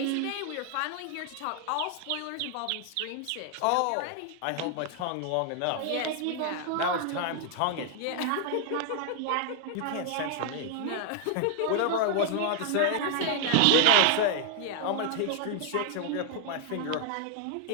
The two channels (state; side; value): different; both; correlation 0.00